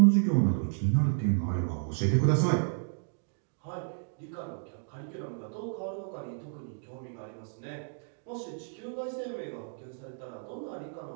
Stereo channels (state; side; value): silent; left; digital silence